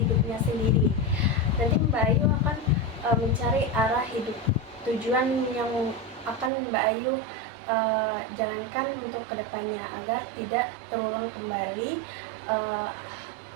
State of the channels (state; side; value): drops out; left; at 6.5 s